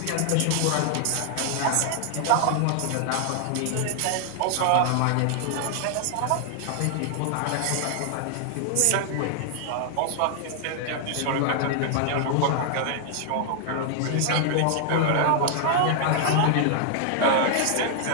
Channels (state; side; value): different; both; correlation 0.00